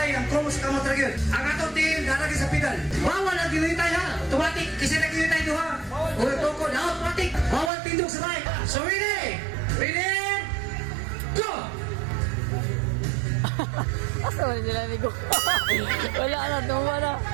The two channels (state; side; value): drops out; left; at 7.7 s